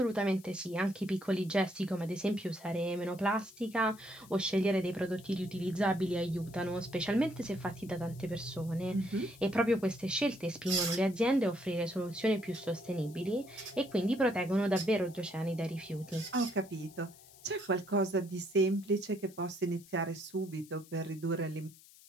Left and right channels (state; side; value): noise; left; hiss, 22 dB below the sound